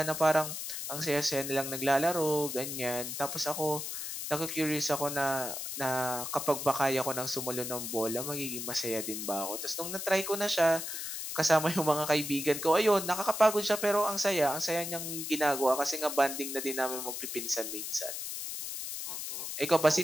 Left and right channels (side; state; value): left; noise; hiss, 5 dB below the sound